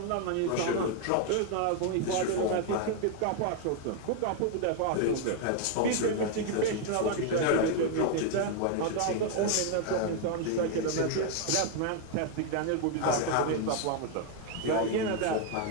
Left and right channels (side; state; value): both; different; correlation 0.00